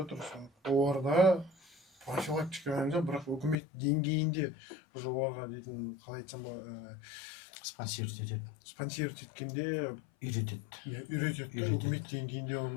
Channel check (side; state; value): right; drops out; at 3.6 s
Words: Оларда профилактика ғана, бірақ үкімет деңгейінде уже оларға дейтін, қалай айтсам ба, Спонсировать етеді. спонсировать еткенде Үйретеді. үйретеді. Үкімет деңгейінде